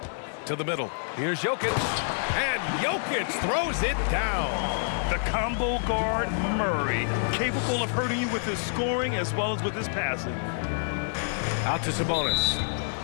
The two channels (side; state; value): right; silent; digital silence